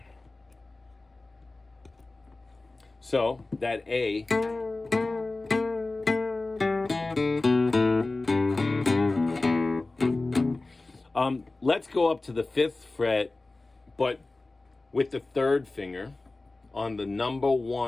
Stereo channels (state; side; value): quieter; right; 3.2 dB